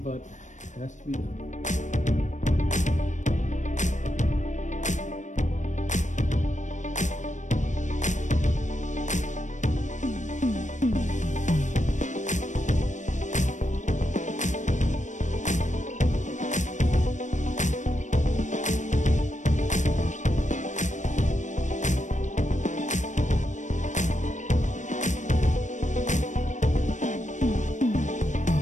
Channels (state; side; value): late; right; 0.35 ms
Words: it has to be done.